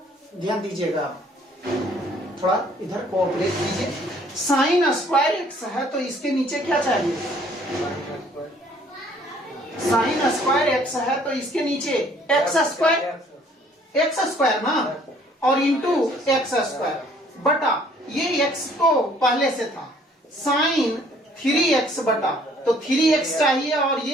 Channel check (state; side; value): normal; both; correlation 0.59